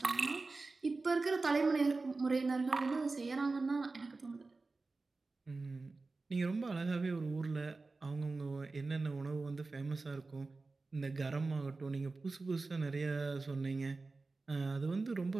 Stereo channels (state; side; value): quieter; left; 3.7 dB